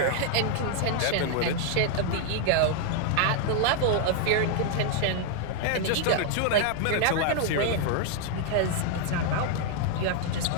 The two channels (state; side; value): different; both; correlation 0.00